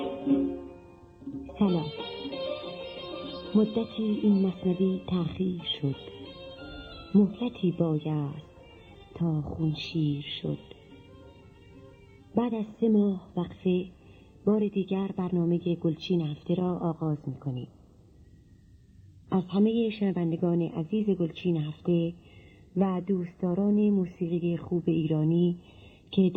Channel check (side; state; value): both; identical; correlation 1.00